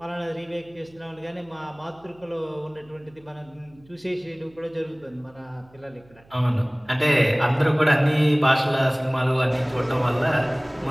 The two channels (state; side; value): noise; right; hum, 28 dB below the sound